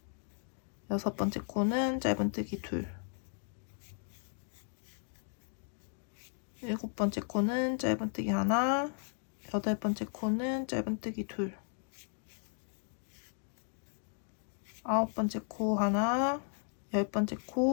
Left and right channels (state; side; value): silent; right; 54 dB below the other